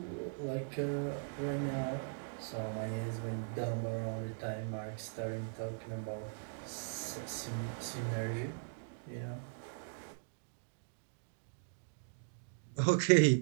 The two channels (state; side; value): silent; left; digital silence